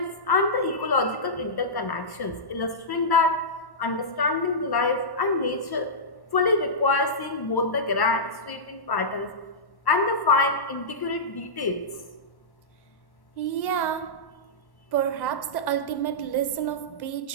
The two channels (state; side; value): late; right; 1.1 ms